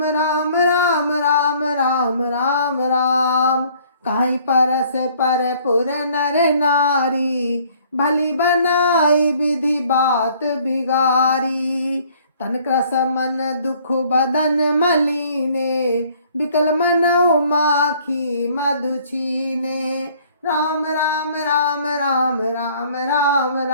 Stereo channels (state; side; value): inverted; both; correlation -0.58